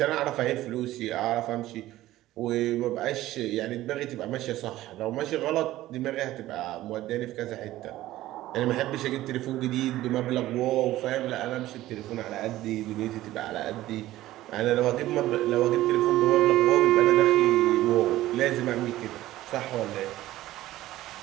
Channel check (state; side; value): quieter; left; 15.5 dB